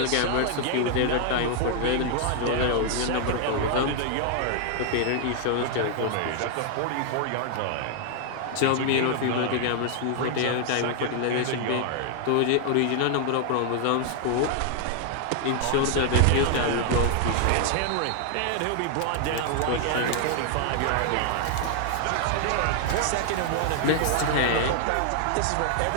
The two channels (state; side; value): different; both; correlation 0.00